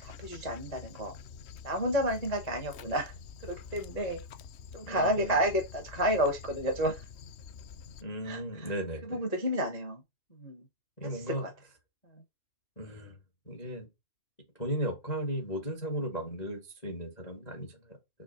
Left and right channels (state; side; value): late; right; 1.9 ms